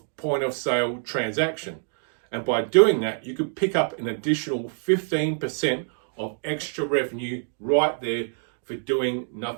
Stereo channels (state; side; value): silent; left; 61 dB below the other